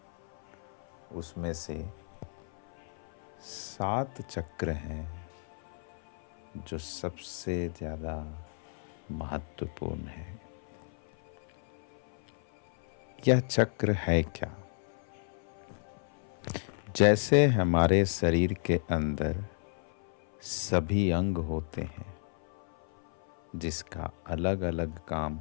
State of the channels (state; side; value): silent; right; 56 dB below the other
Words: उसमें से 7 चक्र हैं जो सबसे ज़्यादा महत्वपूर्ण है। यह चक्र है क्या? जैसे हमारे शरीर के अंदर सभी अंग होते हैं जिसका अलग अलग काम